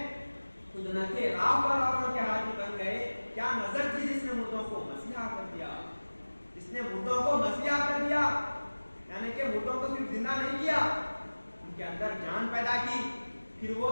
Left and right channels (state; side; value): inverted; both; correlation -1.00